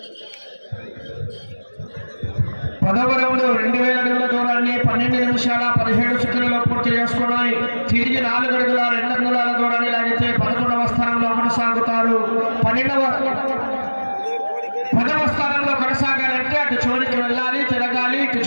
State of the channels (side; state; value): both; inverted; correlation -1.00